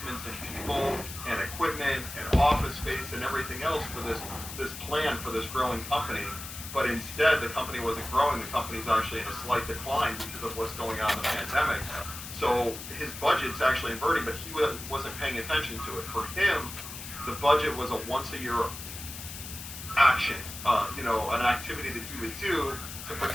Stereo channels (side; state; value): left; noise; hiss, 10 dB below the sound